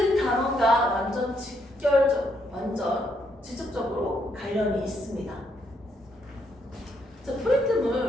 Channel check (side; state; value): both; normal; correlation 0.75